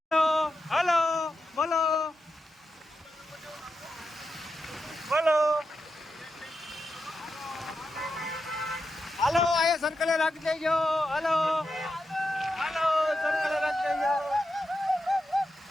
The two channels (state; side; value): normal; both; correlation 0.88